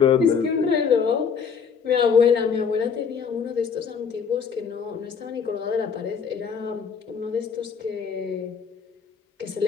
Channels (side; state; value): right; quieter; 6.4 dB